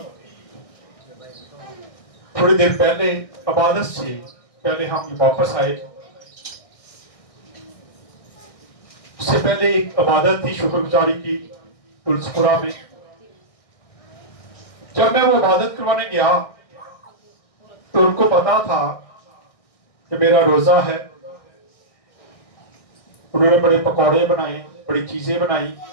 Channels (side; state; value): right; late; 1.6 ms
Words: थोड़ी देर पहले इबादत से पहले हम वापस आए। उससे पहले एक इबादत थी शुक्रगुजारी की तुलसीपुरा में। जब मैं वो इबादत करवाने गया तो उनको पता था कि मेरा रोजा है। उन्होंने बड़े पकौड़े बनाए, बड़ी चीजें बनाई